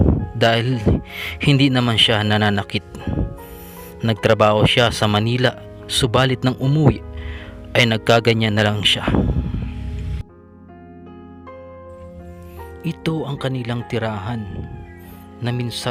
dahil hindi naman siya nananakit. Nagtrabaho siya sa Manila, subalit nang umuwi ay nagkaganyan na lang siya. Ito ang kanilang tirahan na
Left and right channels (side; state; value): both; identical; correlation 1.00